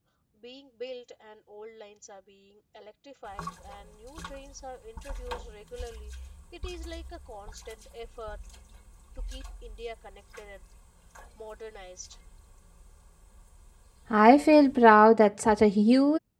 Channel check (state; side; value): identical; both; correlation 1.00